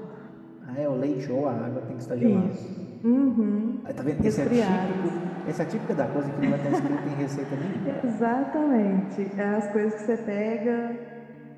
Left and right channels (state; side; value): identical; both; correlation 1.00